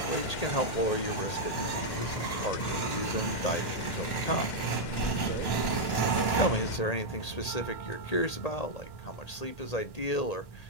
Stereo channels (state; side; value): late; right; 1.1 ms